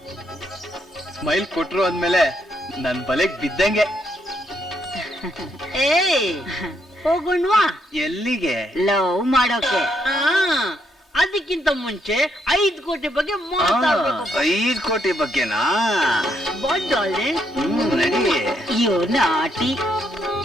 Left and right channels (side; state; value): both; normal; correlation 0.75